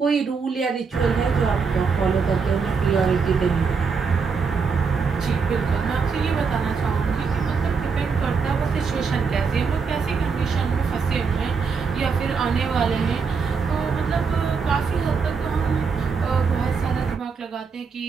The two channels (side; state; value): left; quieter; 5.4 dB